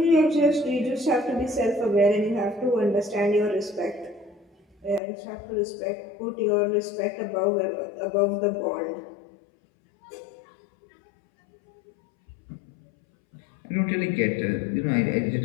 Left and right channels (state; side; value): drops out; right; at 5.0 s